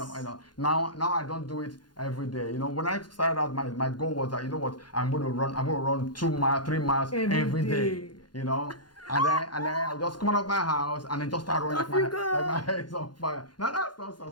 now I don't do it every day. You know, when I started out, my goal was that, you know what, I'm going to run 2 miles, 3 miles every day. You know. And then I'll just come out of my house and then just start running like my head is on fire. Now that's not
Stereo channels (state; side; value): late; right; 0.71 ms